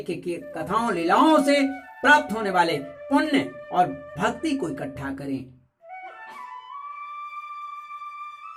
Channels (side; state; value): both; identical; correlation 1.00